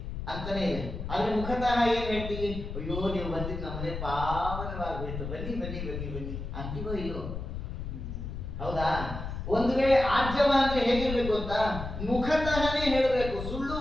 ಅಂತಾನೆ ಇದೆ. ಆದ್ರೆ ಮುಖತಃ ಏನ್ ಹೇಳ್ತೀವಿ, ಅಯ್ಯೋ ನೀವು ಬಂದಿದ್ದು ನಮ್ಮನೆ ಪಾವನವಾಗ್ಬಿಟ್ಟು, ಬನ್ನಿ ಬನ್ನಿ ಬನ್ನಿ ಬನ್ನಿ ಅಂತೀವೋ ಇಲ್ಲೋ? ಹೌದಾ? ಒಂದು ವೇಳೆ ಆರ್ಜವ ಅಂದ್ರೆ ಹೇಗಿರ್ಬೇಕು ಅಂತ, ಮುಖತಃನೇ ಹೇಳಬೇಕು, ಸುಳ್ಳು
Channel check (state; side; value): noise; left; rumble, 6 dB below the sound